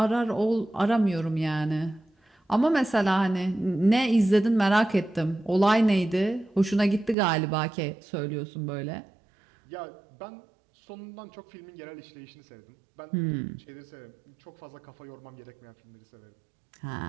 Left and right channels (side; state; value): left; drops out; at 7.2 s